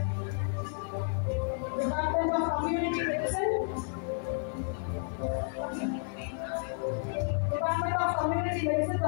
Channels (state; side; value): silent; right; digital silence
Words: Community Medicine, Department of Community Medicine,